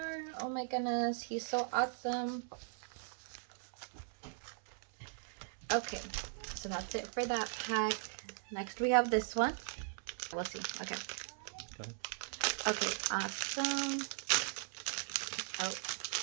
Oh my goodness, he's so awesome. Okay, so that's it for that pack. Next we have this one. We'll see. Okay. Go ahead. Okay, awesome. Oh.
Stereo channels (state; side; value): silent; left; 52 dB below the other